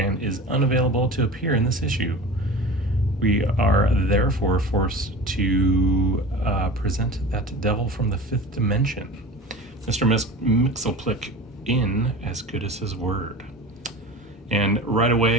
is unavailable to appear in this issue. We are therefore forced to present that devil from the fifth dimension, Mr. Myxlplyx, in as good as his word. And right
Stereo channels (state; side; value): normal; both; correlation 0.34